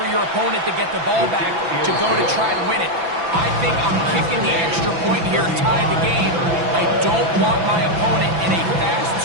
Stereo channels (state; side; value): late; left; 6.0 ms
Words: your opponent to get the ball back to go to try to win it? I think I'm kicking the extra point here, tie the game. I don't want my opponent in a